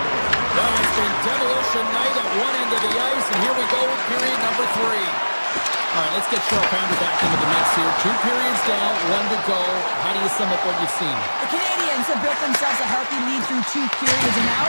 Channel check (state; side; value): inverted; both; correlation -1.00